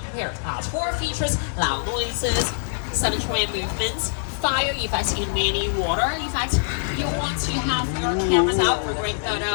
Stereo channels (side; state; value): right; silent; digital silence